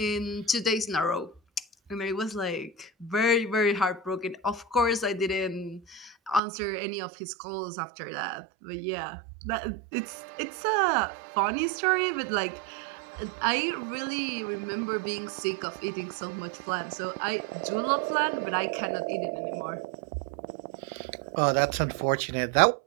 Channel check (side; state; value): left; drops out; at 6.4 s